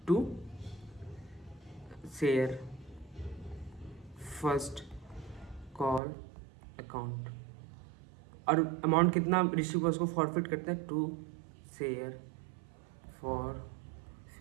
to share first call account, और अमाउंट कितना रिसीव हुआ उसको फॉरफिट करते हैं टू शेयर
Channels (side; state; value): left; drops out; at 6.0 s